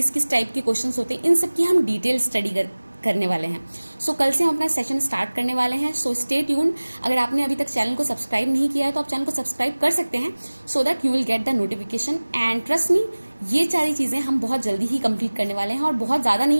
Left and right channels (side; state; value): both; inverted; correlation -1.00